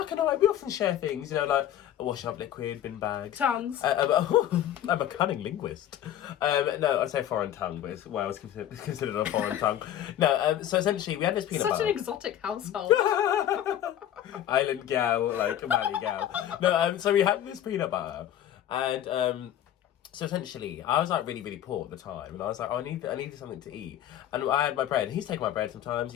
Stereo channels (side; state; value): right; quieter; 11.4 dB